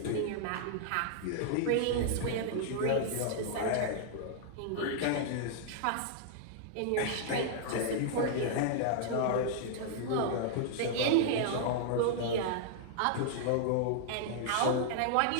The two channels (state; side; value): different; both; correlation -0.01